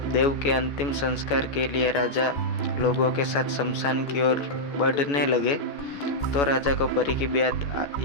देव के अंतिम संस्कार के लिए राजा लोगों के साथ शमशान की ओर बढ़ने लगे, तो राजा को परी की बात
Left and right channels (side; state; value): right; late; 14 ms